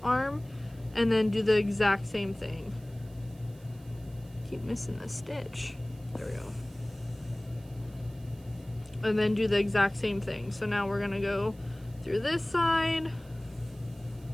and then do the exact same thing. Keep missing the stitch. There we go. And then do the exact same thing. So now we're going to go through this side,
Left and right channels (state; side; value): noise; right; hiss, 27 dB below the sound